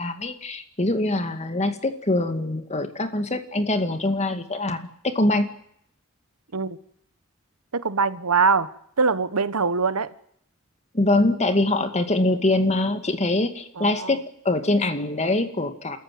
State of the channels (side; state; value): both; normal; correlation 0.32